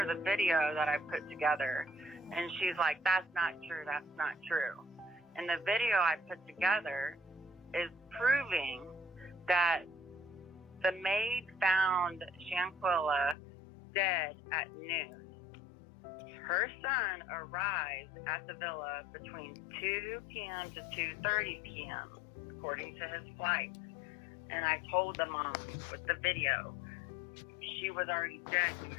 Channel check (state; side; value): drops out; right; at 13.4 s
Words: the video that I put together, and she's like, that's not true, that's not true. And the video I put together is proving that the maid found Shanquilla dead at noon. Her son arrived at the villa between 2 p.m. to 2:30 p.m., according to his flight. And I told the mom with the video, she was already dead when